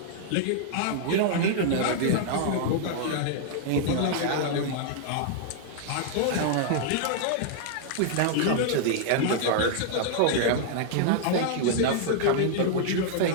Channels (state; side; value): different; both; correlation -0.01